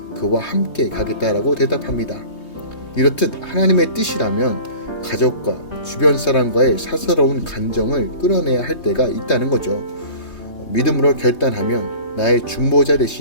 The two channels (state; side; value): late; right; 3.2 ms